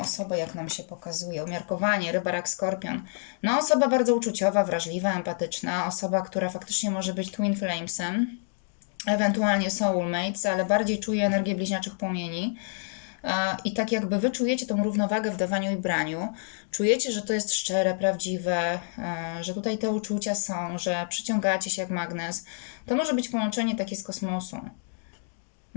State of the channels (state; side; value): silent; right; digital silence